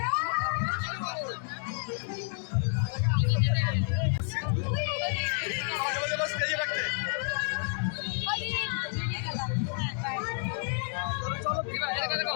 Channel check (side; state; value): right; silent; 58 dB below the other